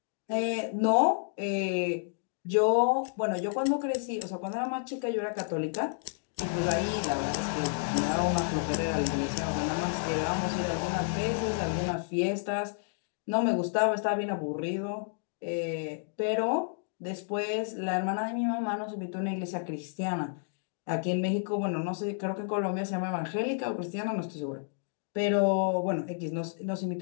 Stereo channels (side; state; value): right; silent; digital silence